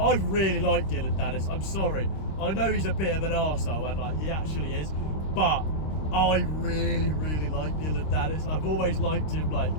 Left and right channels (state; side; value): late; right; 26 ms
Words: really like Dylan Dennis. I'm sorry. I know he's a bit of an arsehole, and like he actually is, but I really, really like Dylan Dennis. I've always liked him, like